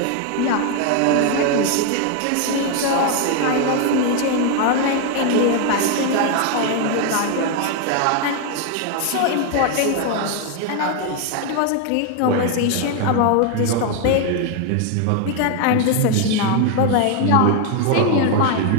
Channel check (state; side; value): different; both; correlation 0.01